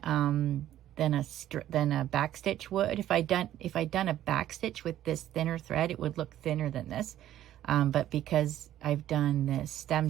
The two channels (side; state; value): left; quieter; 12.5 dB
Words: a back stitch would. If I'd done a back stitch with this thinner thread, it would look thinner than this. But because I've done this stem